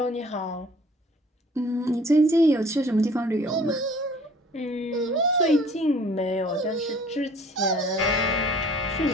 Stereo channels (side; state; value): both; normal; correlation 0.52